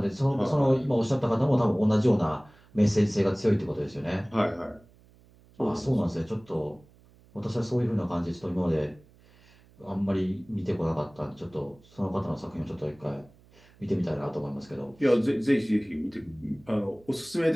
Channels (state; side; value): noise; right; hum, 28 dB below the sound